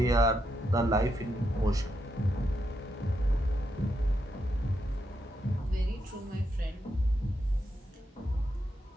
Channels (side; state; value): both; normal; correlation 0.82